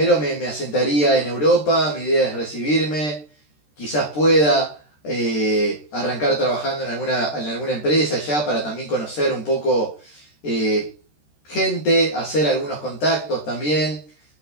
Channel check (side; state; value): right; late; 13 ms